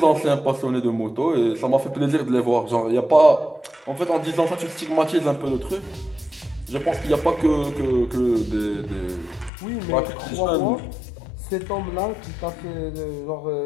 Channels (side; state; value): right; drops out; at 9.5 s